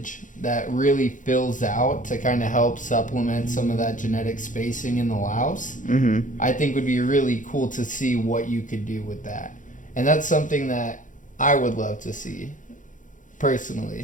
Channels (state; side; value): late; right; 0.37 ms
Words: that really fills out to kind of help supplement some of that genetic spacing in the Laos. I think would be really cool to see what you could do with that. And that's something that I would love to see,